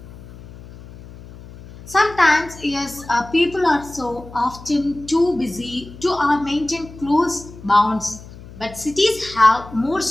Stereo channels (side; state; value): left; noise; hum, 17 dB below the sound